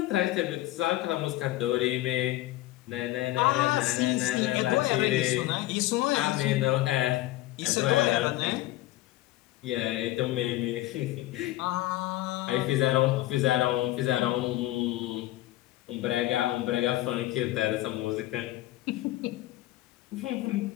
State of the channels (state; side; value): quieter; right; 16.4 dB